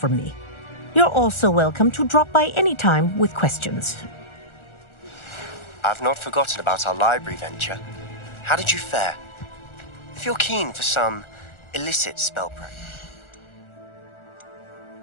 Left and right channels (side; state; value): right; late; 1.4 ms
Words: me. You're also welcome to drop by any time with questions. I've not forgotten about our library venture. How did you fare? If you're keen for some illicit spell practice.